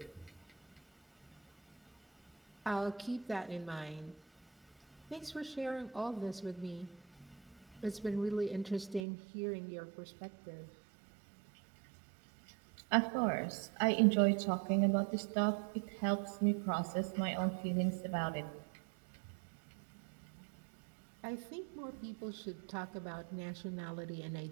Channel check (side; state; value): left; drops out; at 9.1 s